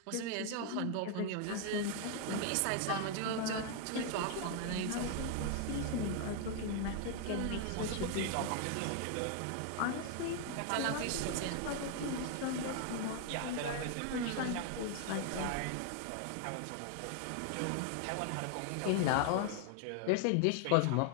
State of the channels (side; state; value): both; different; correlation 0.00